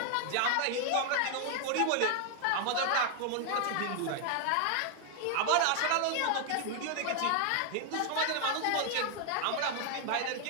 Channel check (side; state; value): both; different; correlation 0.00